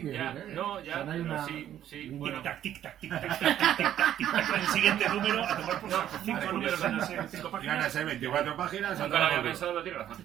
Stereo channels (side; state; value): left; quieter; 11.2 dB